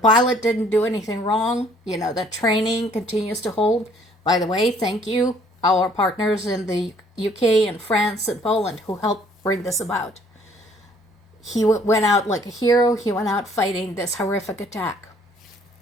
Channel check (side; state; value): both; normal; correlation 0.60